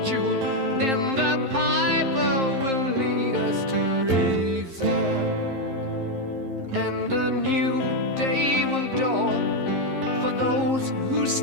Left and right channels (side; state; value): left; late; 11 ms